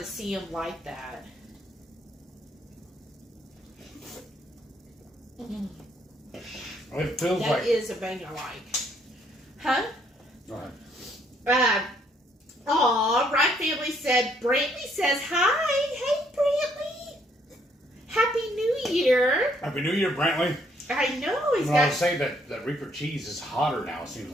see them like that. It feels That like... is a bang I like. Huh? Go ahead. Right Family said, Brantley says hi. Hey, Brantley. Happy New Year. Happy New Year, Brantley. I know. He's I got... would say that Reaper cheese is hotter now, it seems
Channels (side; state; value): both; normal; correlation 0.68